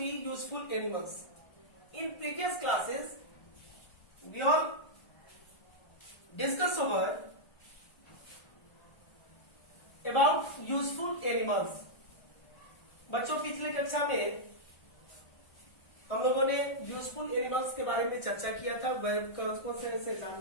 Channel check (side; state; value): right; late; 1.4 ms